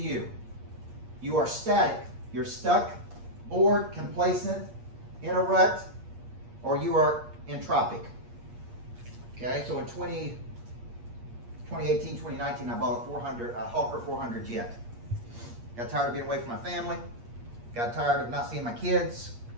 You are static. You're stuck, bored, complacent, in a rut, or you are entropic. Okay, so in 2018, 2019, I bought a Hawker 400 jet. Got tired of being away from my family. Got tired of not seeing my kids.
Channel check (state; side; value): late; left; 8.6 ms